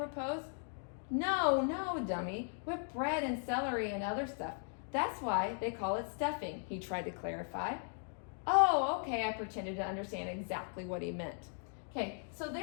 No, dummy, with bread and celery and other stuff. That's why they call it stuffing, he tried to clarify. Oh, okay, I pretended to understand exactly what he meant. Okay, so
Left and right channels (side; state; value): right; silent; 53 dB below the other